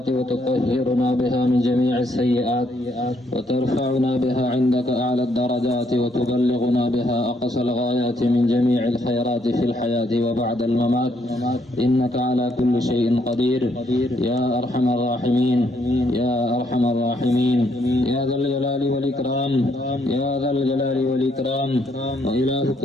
وتطهرنا بها من جميع السيئات وترفعنا بها عندك أعلى الدرجات وتبلغنا بها أقصى الغايات من جميع الخيرات في الحياة وبعد الممات إنك على كل شيء قدير يا أرحم الراحمين يا أرحم الراحمين يا ذا الجلال والإكرام يا ذا الجلال والإكرام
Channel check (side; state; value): both; normal; correlation 0.72